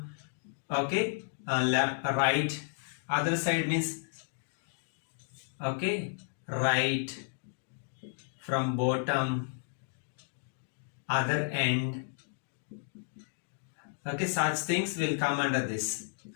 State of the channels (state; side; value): silent; right; digital silence